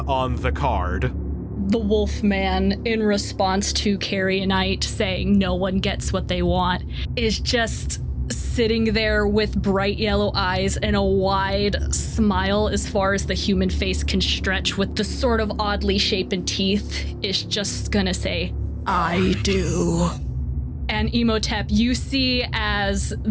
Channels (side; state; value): both; identical; correlation 1.00